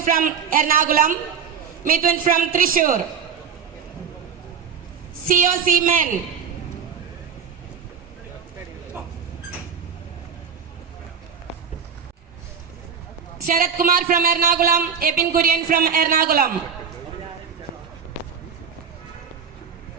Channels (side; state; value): left; quieter; 6.8 dB